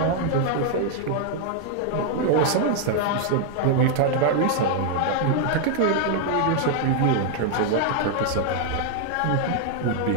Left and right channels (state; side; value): different; both; correlation 0.00